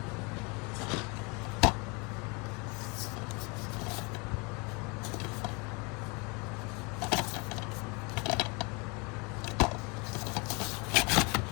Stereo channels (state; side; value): quieter; right; 30.1 dB